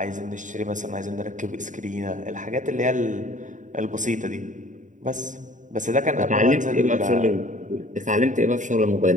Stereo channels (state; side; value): late; left; 0.36 ms